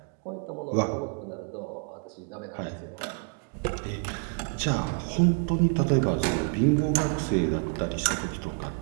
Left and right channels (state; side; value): quieter; left; 36.6 dB